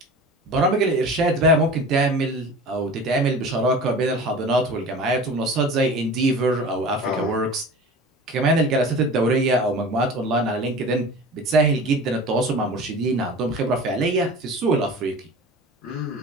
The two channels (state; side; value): normal; both; correlation 0.38